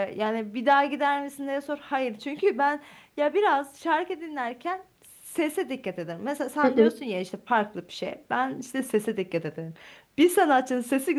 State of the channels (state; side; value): identical; both; correlation 1.00